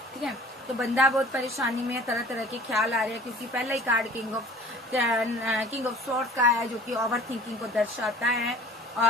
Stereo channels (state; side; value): normal; both; correlation 0.47